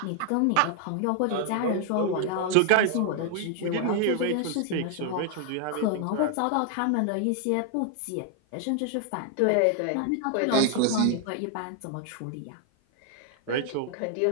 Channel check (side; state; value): both; different; correlation 0.00